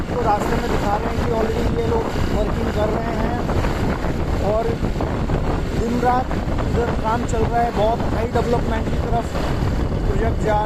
रास्ते में दिखा रहे हैं कि ऑलरेडी ये लोग वर्किंग कर रहे हैं और दिन रात इधर काम चल रहा है। बहुत हाई डेवलपमेंट की तरफ प्रोजेक्ट जा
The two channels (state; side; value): identical; both; correlation 1.00